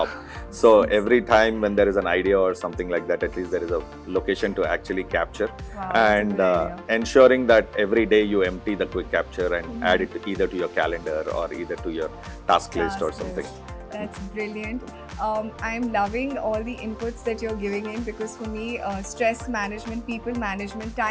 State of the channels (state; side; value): identical; both; correlation 1.00